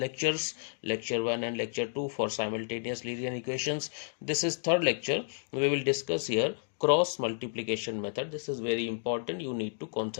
lecture 1 and lecture 2, for simultaneous linear equations. This is third lecture. We will discuss here cross multiplication method. This is very important, you need to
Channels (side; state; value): right; silent; digital silence